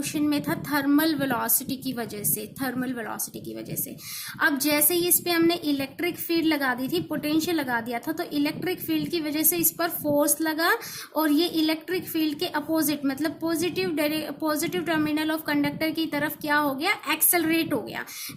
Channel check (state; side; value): identical; both; correlation 1.00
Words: में था थर्मल वेलोसिटी की वजह से, थर्मल वेलोसिटी की वजह से। अब जैसे ही इस पे हमने इलेक्ट्रिक फील्ड लगा दी थी, पोटेंशियल लगा दिया था, तो इलेक्ट्रिक फील्ड की वजह से इस पर फोर्स लगा और ये इलेक्ट्रिक फील्ड के अपोजिट मतलब पॉजिटिव टर्मिनल ऑफ कंडक्टर की तरफ क्या हो गया, एक्सेलरेट हो गया।